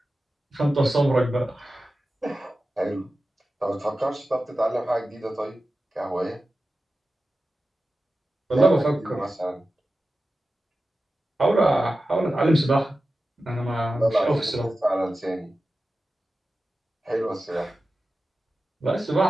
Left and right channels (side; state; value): both; normal; correlation 0.94